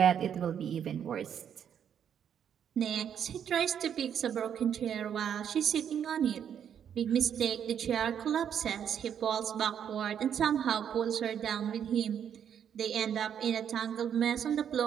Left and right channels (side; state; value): left; quieter; 8.7 dB